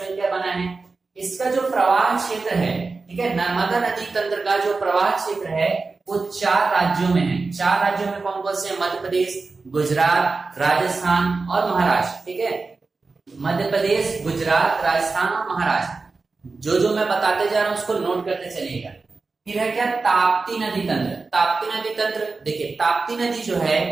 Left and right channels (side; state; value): left; quieter; 4.0 dB